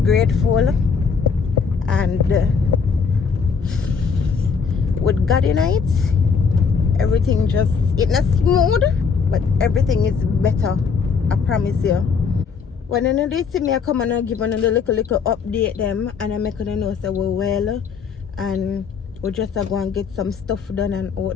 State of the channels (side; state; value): right; quieter; 5.7 dB